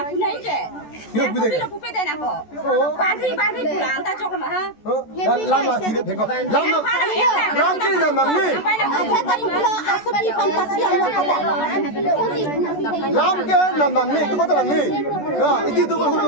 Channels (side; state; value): right; late; 14 ms